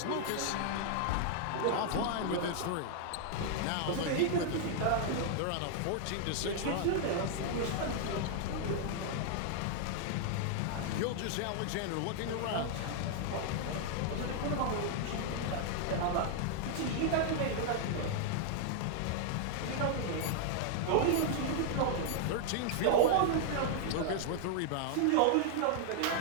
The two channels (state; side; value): different; both; correlation 0.00